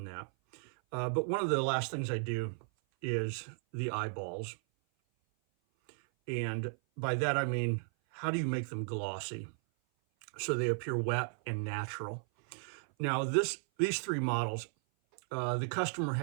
that. But one of the last things I do is the eyeballs. And by that I mean, how do you make them glossy so they appear wet and natural? Now, these three models, the customer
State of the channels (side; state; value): left; silent; 54 dB below the other